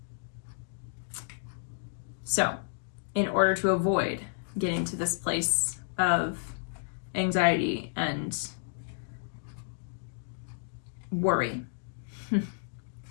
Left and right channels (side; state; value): right; silent; digital silence